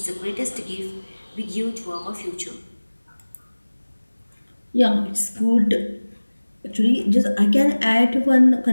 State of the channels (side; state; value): both; inverted; correlation -1.00